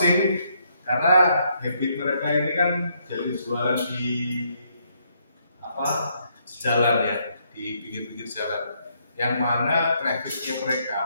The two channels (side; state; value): both; inverted; correlation -0.73